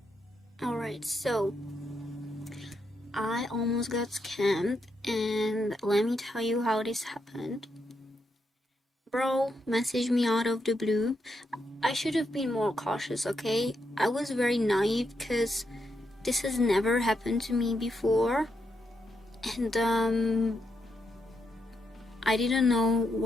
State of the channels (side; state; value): both; normal; correlation 0.82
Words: Alright, so I almost got scammed, and let me tell you how this happened. Bro messaged me out of the blue. I should have been more cautious, okay? I was very naive because this has never happened to me before, and I didn't know